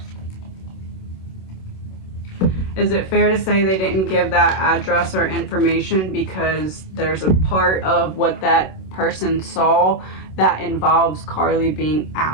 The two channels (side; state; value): right; late; 27 ms